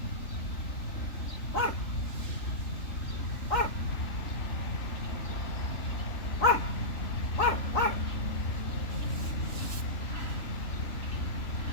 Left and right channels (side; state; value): right; late; 3.4 ms